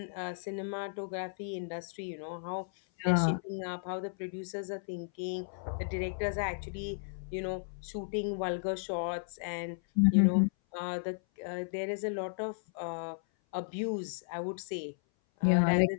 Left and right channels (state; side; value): silent; right; 55 dB below the other